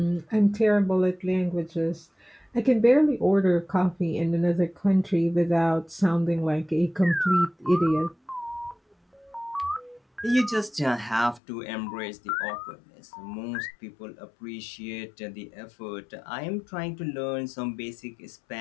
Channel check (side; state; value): right; drops out; at 11.4 s